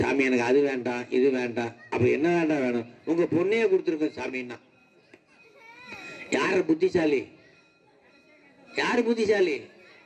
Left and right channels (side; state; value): both; identical; correlation 1.00